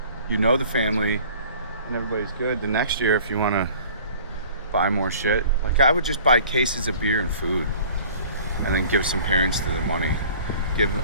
know the family and everybody's good, the next year, if you want to buy more shit, like, I would just buy cases of beer and food and then give some parents to the money. Give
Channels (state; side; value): inverted; both; correlation -0.49